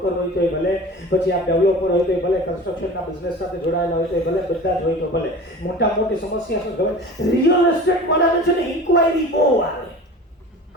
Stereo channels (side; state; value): both; normal; correlation 0.38